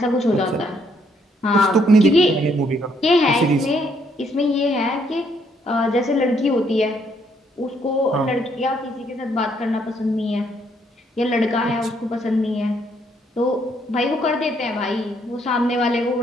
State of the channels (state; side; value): normal; both; correlation 0.70